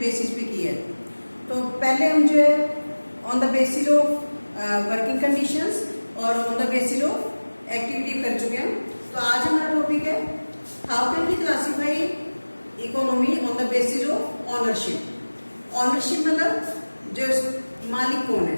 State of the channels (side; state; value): both; inverted; correlation -1.00